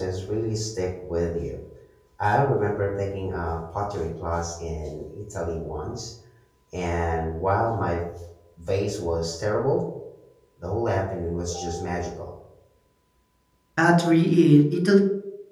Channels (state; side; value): identical; both; correlation 1.00